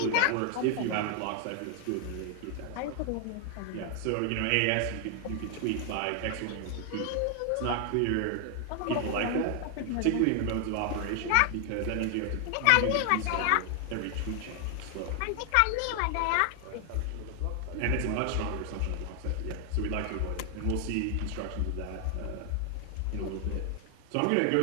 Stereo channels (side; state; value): both; different; correlation 0.00